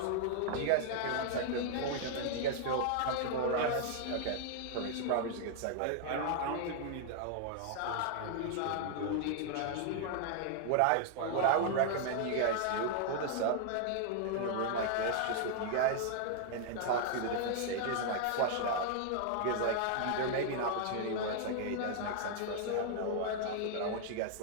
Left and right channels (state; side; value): different; both; correlation 0.00